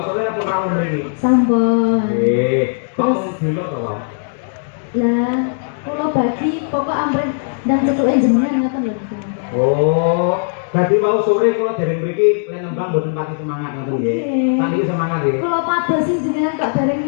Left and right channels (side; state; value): right; silent; 67 dB below the other